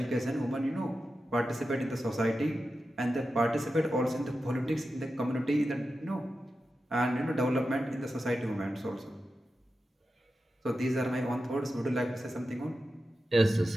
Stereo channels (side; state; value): both; normal; correlation 0.91